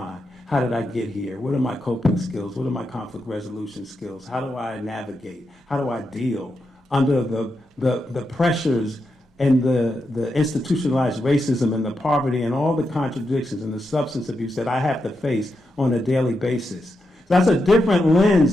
How did I get here? What are my coping skills? What are my conflict resolution skills? How do I navigate? How do I deal under the pressures and the institutionalized racism and the poverty and all the contradictions and the substance abuse that I have to face on a daily basis? So that's a different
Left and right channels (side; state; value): both; normal; correlation 0.85